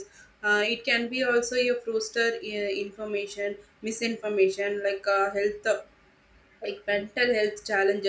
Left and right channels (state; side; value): identical; both; correlation 1.00